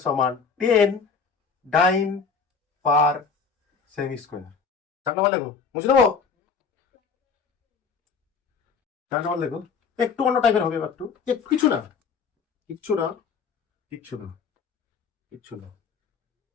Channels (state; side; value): quieter; right; 5.6 dB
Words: সমান 10 ডাইন পার সেমি স্কোয়ার। 4 নম্বর লেখো, বুঝে দেবো? 4 নম্বর লেখো, একটু অন্য টাইপের হবে, একটু একটু কিছু না, কিচ্ছু না, কিচ্ছু না, কিচ্ছু না,